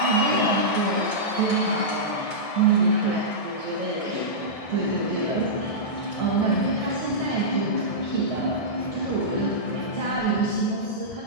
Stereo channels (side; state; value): right; late; 1.6 ms